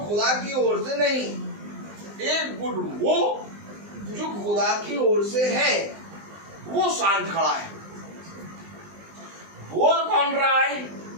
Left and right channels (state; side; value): late; left; 19 ms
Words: खुदा की ओर से नहीं, एक गुट वो जो खुदा की ओर से है, वो शांत खड़ा है। बोल कौन रहा है?